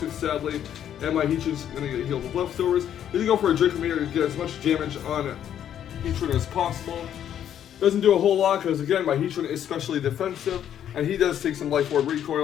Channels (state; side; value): quieter; right; 10.0 dB